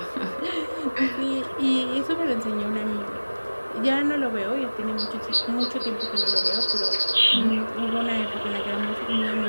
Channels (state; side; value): inverted; both; correlation -1.00